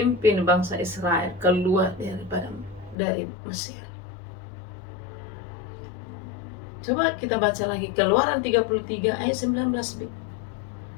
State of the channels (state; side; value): drops out; right; at 3.0 s